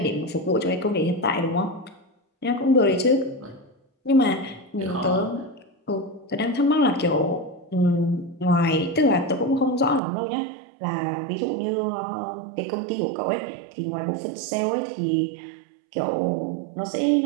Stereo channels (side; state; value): left; drops out; at 10.0 s